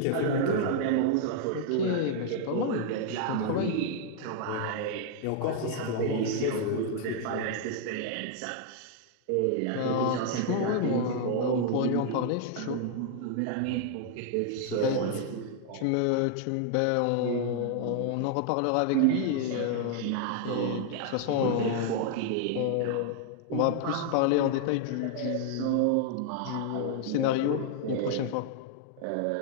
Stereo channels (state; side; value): different; both; correlation 0.00